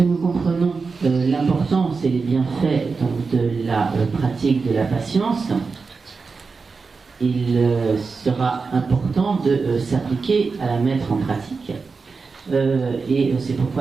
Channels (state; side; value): quieter; left; 4.6 dB